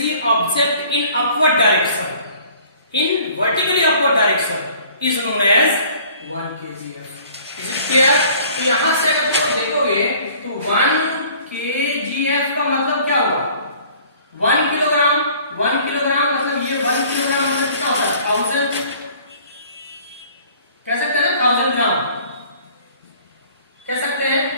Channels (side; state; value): both; inverted; correlation -0.53